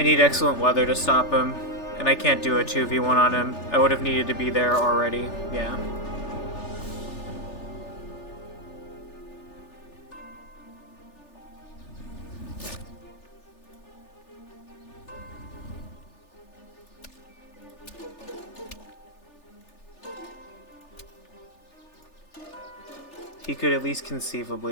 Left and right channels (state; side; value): late; right; 3.4 ms